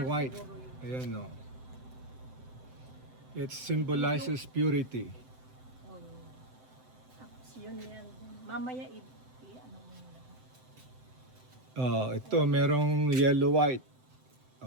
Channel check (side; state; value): left; late; 7.8 ms